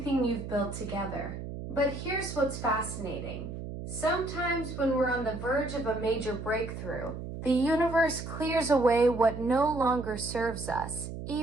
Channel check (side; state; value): right; noise; hum, 8 dB below the sound